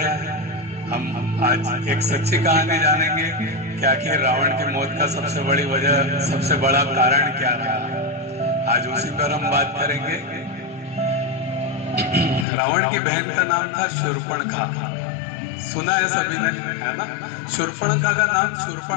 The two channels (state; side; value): drops out; right; at 12.5 s